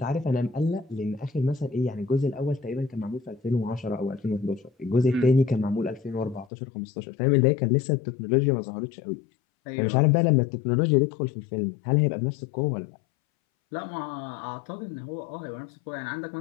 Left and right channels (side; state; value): right; drops out; at 6.5 s